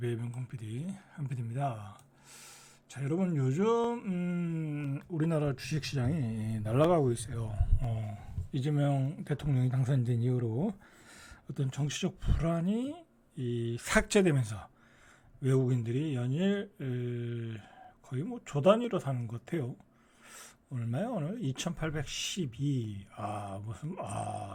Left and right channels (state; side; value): identical; both; correlation 1.00